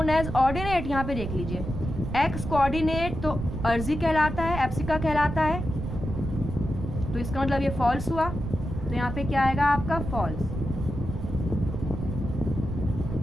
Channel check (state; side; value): noise; right; rumble, 6 dB below the sound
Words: as ordinate, यहाँ पे देख लीजिए, x कोऑर्डिनेट तो अर्जी कहलाता है, एप्सिका कहलाता है, तो इसका मतलब ये फॉल्स हुआ। तो यहाँ पे क्या आएगा आपका, फॉल्स,